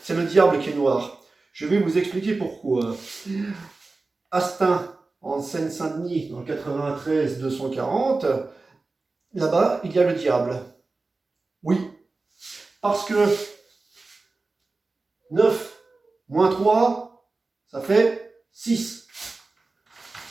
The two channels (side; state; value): left; quieter; 3.6 dB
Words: le diable qui est noir. Je vais vous expliquer pourquoi. Astin, en Seine-Saint-Denis, dans le 93 240, là-bas, il y a le diable. Oui, parce que 9 moins 3, ça fait 6.